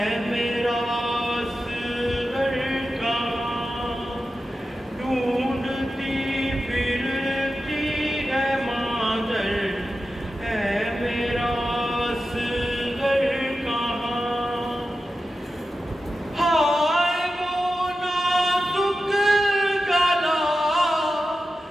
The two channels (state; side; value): normal; both; correlation 0.92